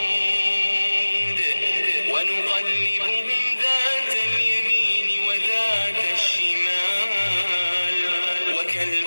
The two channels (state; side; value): inverted; both; correlation -1.00